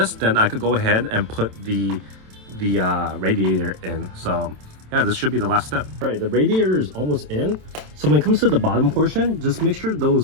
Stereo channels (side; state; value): left; late; 27 ms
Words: then I could go ahead and put the radiator in. So yeah, this should be the last step. All right, the radiator is almost in. So when it comes to the bottom portion, just make sure